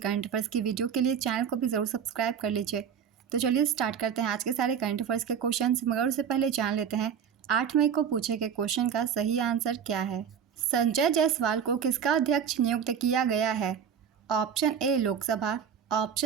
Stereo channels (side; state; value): left; quieter; 7.7 dB